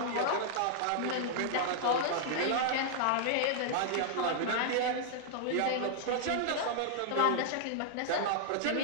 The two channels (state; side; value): different; both; correlation -0.01